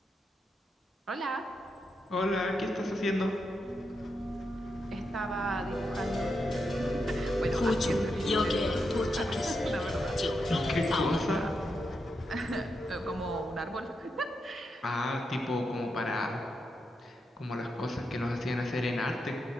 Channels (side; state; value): both; normal; correlation 0.85